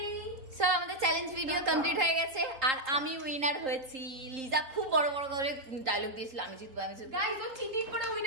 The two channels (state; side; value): late; left; 3.8 ms